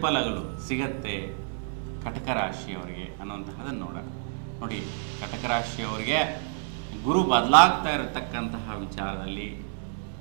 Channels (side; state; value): left; silent; digital silence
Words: ಸಿಗತ್ತೆ ಕಟಕ ರಾಶಿಯವರಿಗೆ ಅನ್ನುವಂತಹದನ್ನು ನೋಡೋಣ. ನೋಡಿ, ಕಟಕ ರಾಶಿಯವರಿಗೆ ಗುರು ಬದಲಾಗ್ತಾ ಇರತಕ್ಕಂತಹ ವಿಚಾರದಲ್ಲಿ